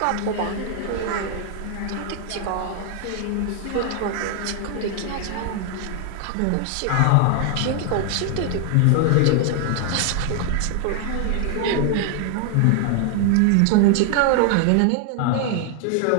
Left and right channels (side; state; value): both; different; correlation 0.00